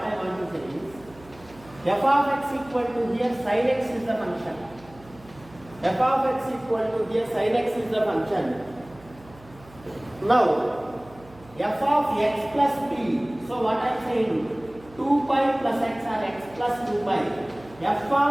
want to say is, f of x equal to here sin x is the function. F of x equal to here sin x is the function. Now f of x plus p. So what I am saying, 2 pi plus x or x plus 2 pi. F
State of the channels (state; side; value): noise; right; hum, 23 dB below the sound